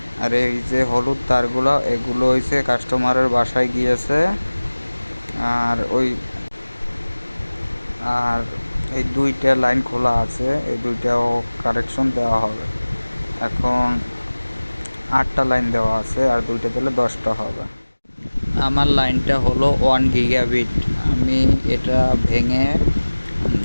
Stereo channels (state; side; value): inverted; both; correlation -1.00